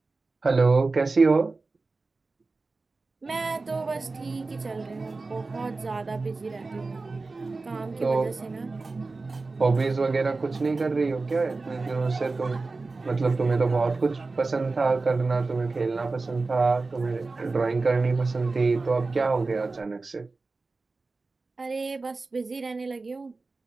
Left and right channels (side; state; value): left; quieter; 3.7 dB